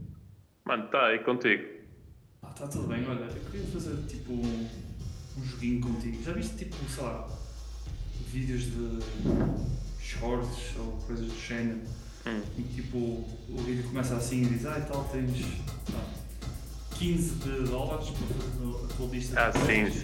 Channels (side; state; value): both; identical; correlation 1.00